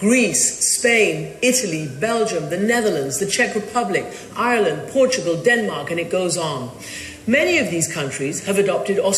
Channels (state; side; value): identical; both; correlation 1.00